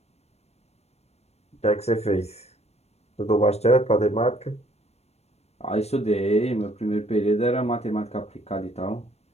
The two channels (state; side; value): late; right; 0.31 ms